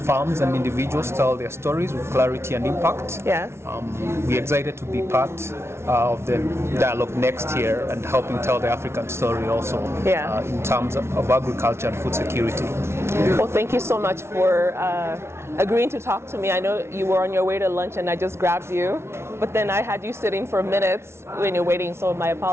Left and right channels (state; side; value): late; left; 0.12 ms